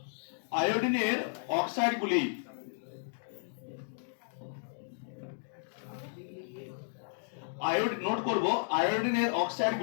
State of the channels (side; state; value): right; silent; digital silence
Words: নোট করব, আয়োডিনের